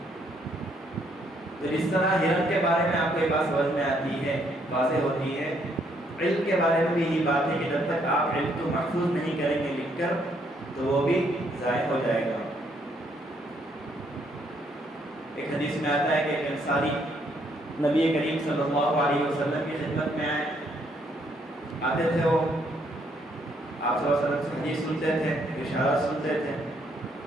تو اس طرح ہرن کے بارے میں آپ کو یہ بات سمجھ میں آتی ہے، واضح ہوتی ہے. علم کے بارے میں بھی یہی بات ہے کہ جب تک آپ علم کو محفوظ نہیں کریں گے لکھ کر تو وہ بھی ضائع ہو جائے گا. ایک حدیث میں آتا ہے کہ ایک انصاری نبی کریم صلی اللہ علیہ وسلم کی خدمت میں آتے تھے. وہ آپ صلی اللہ علیہ وسلم سے حدیث سنتے تھے، اشارات سنتے تھے،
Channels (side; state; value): both; normal; correlation 0.70